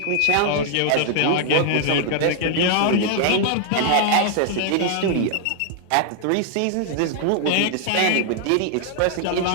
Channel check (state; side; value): different; both; correlation 0.00